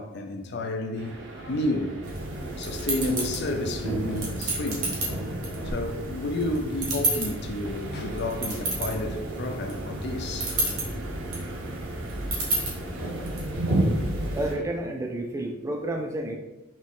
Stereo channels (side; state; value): both; normal; correlation 0.42